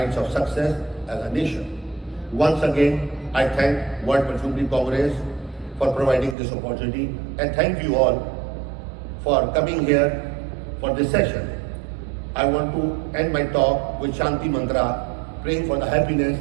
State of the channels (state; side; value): drops out; left; at 6.4 s